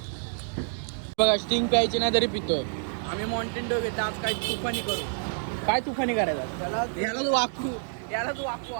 बघा स्टिंग प्यायची नाही तरी पितोय आम्ही माउंटेन ड्यू घेतो आज काय तुफानी करू काय तुफानी करायचं याला तू वाकू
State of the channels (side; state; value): left; silent; digital silence